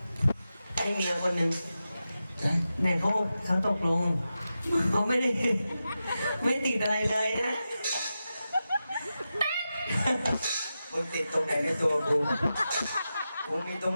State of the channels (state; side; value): inverted; both; correlation -0.91